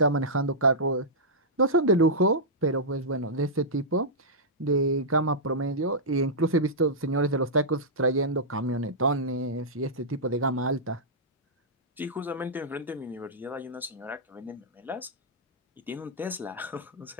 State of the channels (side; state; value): both; normal; correlation -0.12